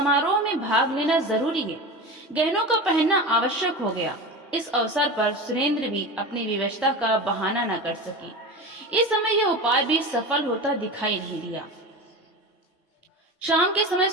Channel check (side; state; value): both; normal; correlation 0.28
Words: में भाग लेना जरूरी है। गहनों का पहनना आवश्यक हो गया। इस अवसर पर सुरेंद्र भी अपनी विवशता का बहाना न कर सकी। इस समय यह उपाय भी सफल होता दिखाई नहीं दिया। शाम के समय